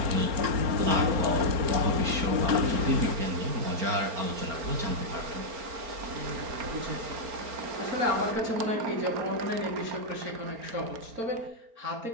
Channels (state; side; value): late; left; 4.4 ms